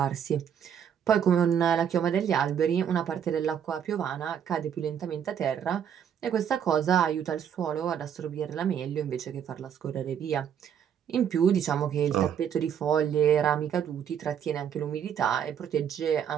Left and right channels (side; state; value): left; quieter; 8.5 dB